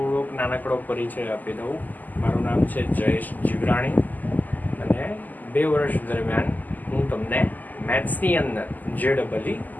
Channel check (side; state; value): right; late; 0.083 ms